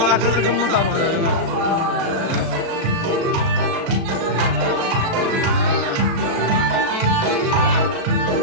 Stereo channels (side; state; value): left; late; 36 ms